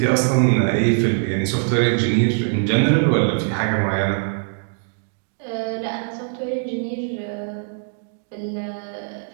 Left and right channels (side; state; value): left; silent; 64 dB below the other